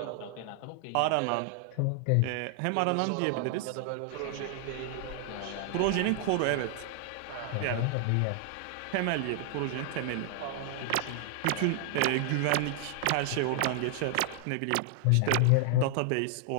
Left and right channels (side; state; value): both; different; correlation 0.00